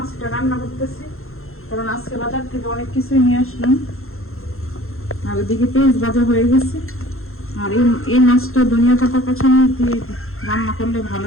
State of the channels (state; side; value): late; right; 0.61 ms